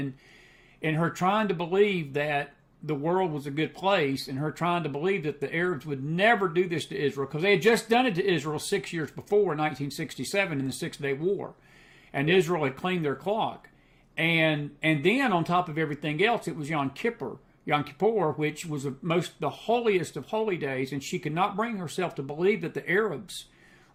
her trying to believe that the world was a good place, and her trying to believe that the Arabs would never do this to Israel, because they had just done it to Israel 6 years before, in 1967, in the Six-Day War. And Israel had cleaned their clock. And then, on top of everything else, it was Yom Kippur, which was the holiest of holy days, and she could not bring herself to believe that the Arabs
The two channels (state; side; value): identical; both; correlation 1.00